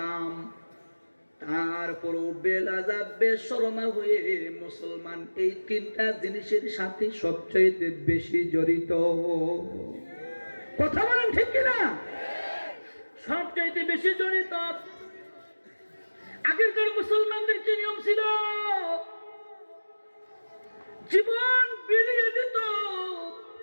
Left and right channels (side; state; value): both; inverted; correlation -1.00